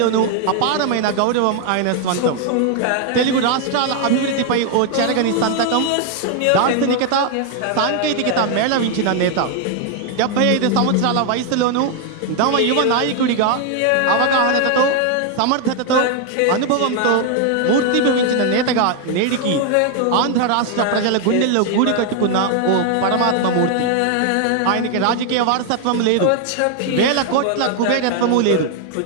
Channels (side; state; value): both; different; correlation 0.00